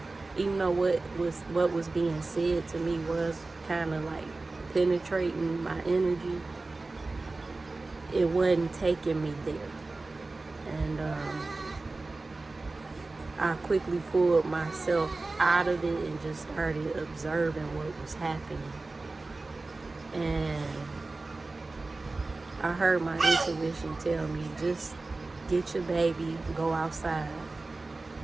even though what was being said to me was kind of like penetrating my energy, it wasn't taking me there. And I quickly pulled myself out of it and just started observing what was happening. And I heard my intuition tell me, just get your baby, go outside.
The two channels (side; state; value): left; quieter; 3.4 dB